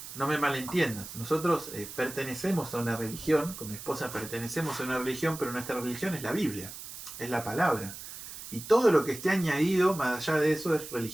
no me malentiendas. Nosotros pertenecemos a una religión, con mi esposa pertenecemos a una religión, pero nuestra religión es la Biblia, es la palabra. Y todo lo que esté añadido, más allá de eso, es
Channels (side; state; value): right; noise; hiss, 12 dB below the sound